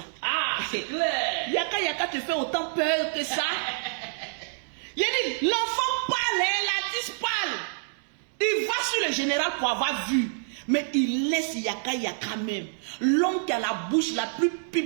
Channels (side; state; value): left; silent; 60 dB below the other